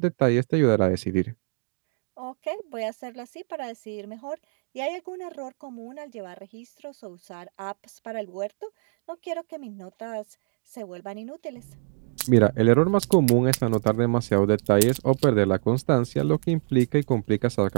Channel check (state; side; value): silent; left; digital silence